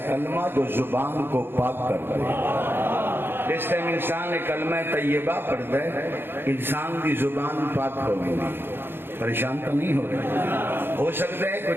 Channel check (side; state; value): left; late; 0.10 ms